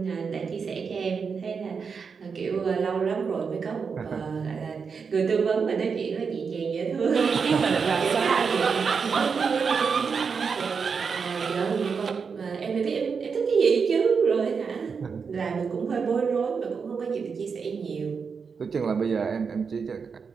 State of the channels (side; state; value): left; quieter; 5.7 dB